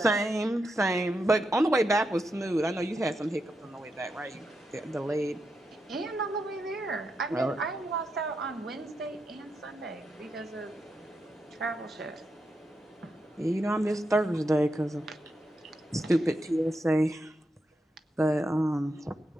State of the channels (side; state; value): both; normal; correlation 0.85